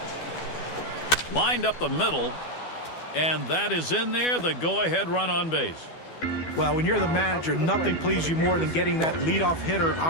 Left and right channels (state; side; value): late; right; 12 ms